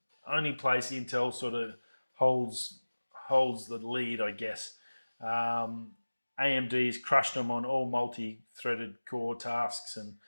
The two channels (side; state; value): both; inverted; correlation -1.00